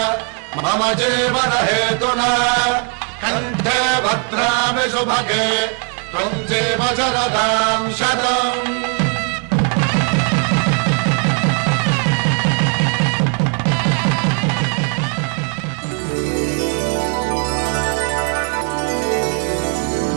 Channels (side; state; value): left; quieter; 39.4 dB